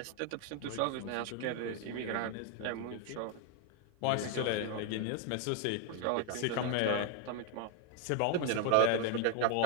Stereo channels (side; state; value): both; different; correlation 0.01